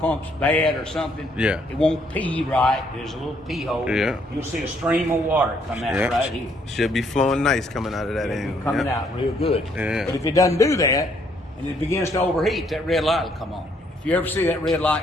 bad or something, it won't pee right. There's a little pee hole. Yeah. You'll see a stream of water come out right here. Should be flowing nice coming out of that end. Coming out real good. Yeah. But if it doesn't do that and it begins to overheat, that red light will come on. If you ever see that red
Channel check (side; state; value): both; normal; correlation 0.69